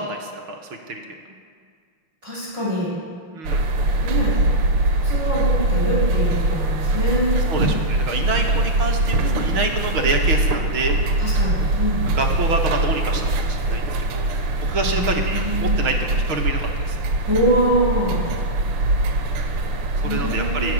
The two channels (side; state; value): left; late; 6.3 ms